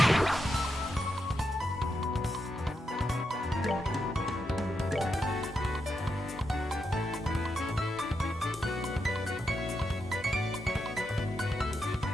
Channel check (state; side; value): normal; both; correlation 0.84